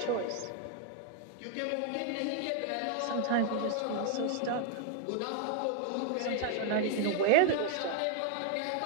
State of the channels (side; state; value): both; different; correlation 0.01